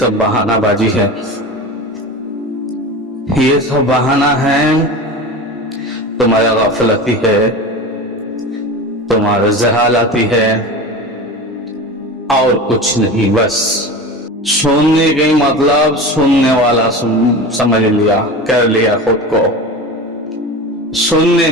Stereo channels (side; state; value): both; normal; correlation 0.30